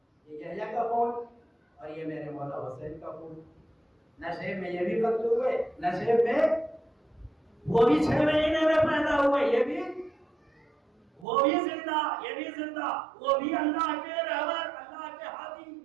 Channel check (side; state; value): left; drops out; at 11.2 s